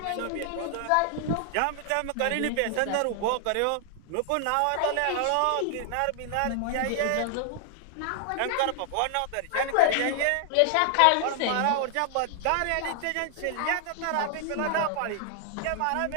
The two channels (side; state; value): both; different; correlation 0.00